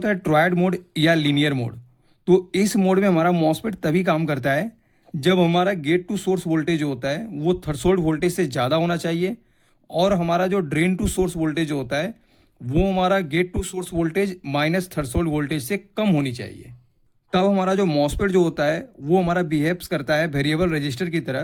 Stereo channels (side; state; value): both; identical; correlation 1.00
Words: है ट्रायड मोड या लीनियर मोड। तो इस मोड में हमारा मॉसफेट तभी काम करता है जब हमारा गेट टू सोर्स वोल्टेज होता है वो थ्रेशोल्ड वोल्टेज से ज़्यादा होना चाहिए, और हमारा जो ड्रेन टू सोर्स वोल्टेज होता है वो हमारा gate to source voltage minus threshold voltage से कम होनी चाहिए। तब हमारा जो मॉसफेट जो होता है वो हमारा बिहेव्स करता है वेरिएबल रजिस्टर की